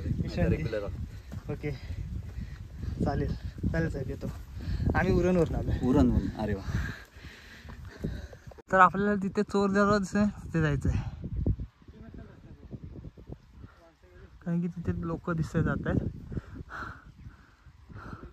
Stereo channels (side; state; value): both; identical; correlation 1.00